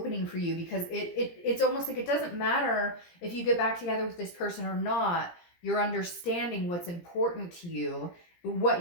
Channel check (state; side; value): late; right; 17 ms